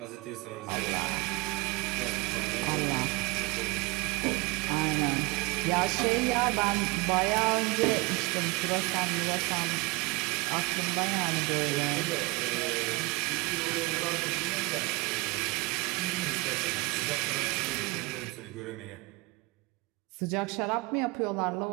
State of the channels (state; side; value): quieter; left; 24.8 dB